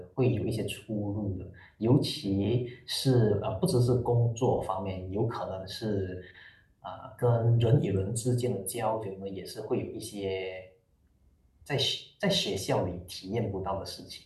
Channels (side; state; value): both; identical; correlation 1.00